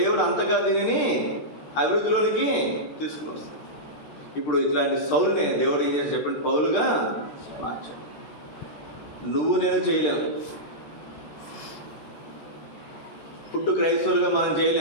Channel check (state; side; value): late; right; 13 ms